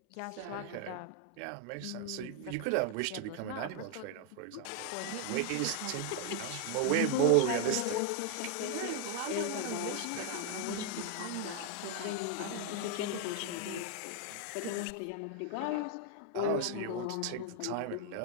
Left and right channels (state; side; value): different; both; correlation 0.00